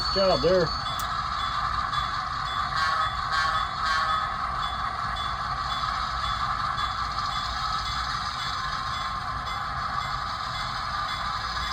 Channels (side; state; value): both; identical; correlation 1.00